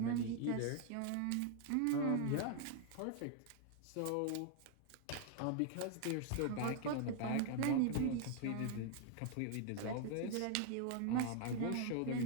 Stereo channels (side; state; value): both; different; correlation 0.00